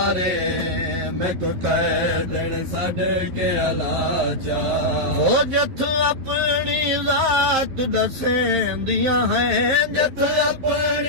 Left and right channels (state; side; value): late; left; 11 ms